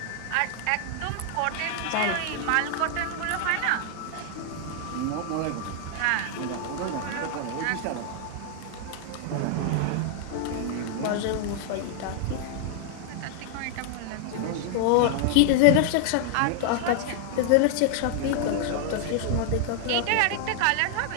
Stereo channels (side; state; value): both; different; correlation 0.00